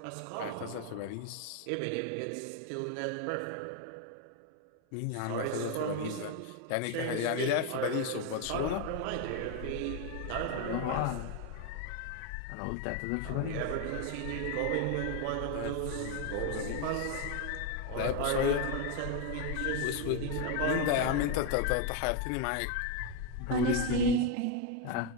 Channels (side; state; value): both; different; correlation 0.01